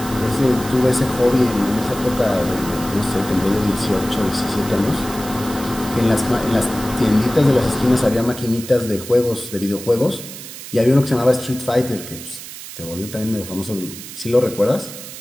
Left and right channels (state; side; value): noise; right; hiss, 12 dB below the sound